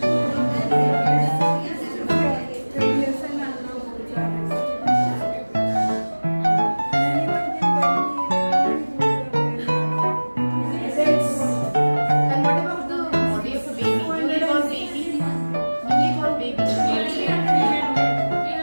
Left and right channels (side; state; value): both; inverted; correlation -1.00